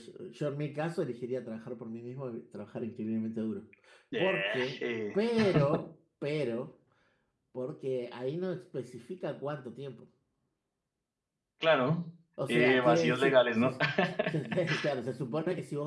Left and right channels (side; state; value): both; identical; correlation 1.00